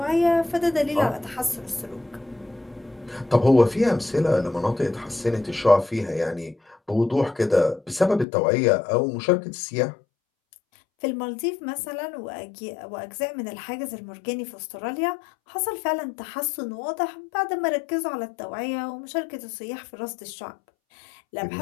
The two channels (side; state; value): right; drops out; at 8.2 s